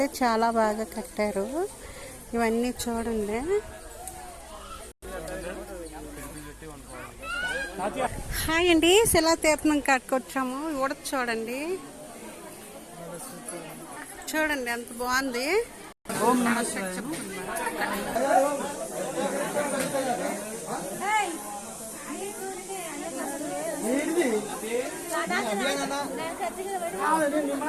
చాలా బాగా కట్టారు. ఇవన్నీ చూడండి. హాయ్ అండి, శిలాతీర్థం కట్టుకొచ్చాము. ఉడత చూడండి, చూడండి ఎంత బాగుంది.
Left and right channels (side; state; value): both; identical; correlation 1.00